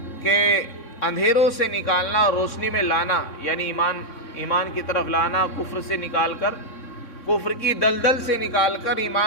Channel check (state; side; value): late; right; 3.6 ms